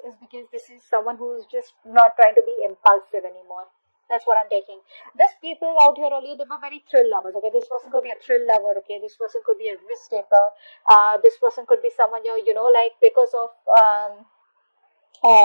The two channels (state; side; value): inverted; both; correlation -1.00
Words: because this is someone who's just not trying to be impulsive anymore. That's what I'm taking. These people out here earlier, they were very thrill lovers. Okay, this person could be a thrill lover. Okay, this person could be a risk taker. This person could be someone like because of um,